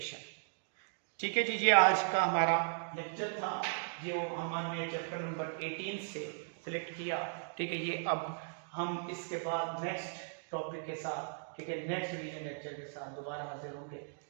ठीक है जी। ये आज का हमारा लेक्चर था जो हमने चैप्टर नंबर 18 से सिलेक्ट किया, ठीक है। ये अब हम इसके बाद नेक्स्ट टॉपिक के साथ, ठीक है, नेक्स्ट रिवीजन लेक्चर के साथ दोबारा हाजिर होंगे।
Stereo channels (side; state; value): left; silent; digital silence